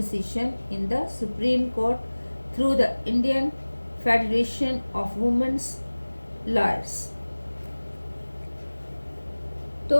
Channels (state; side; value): inverted; both; correlation -1.00